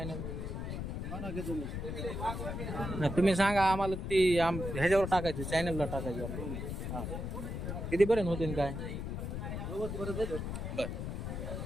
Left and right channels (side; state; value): left; noise; rumble, 4 dB below the sound